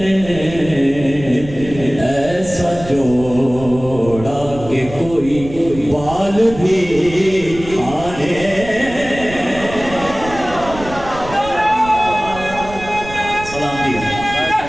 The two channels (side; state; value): right; noise; rumble, 13 dB below the sound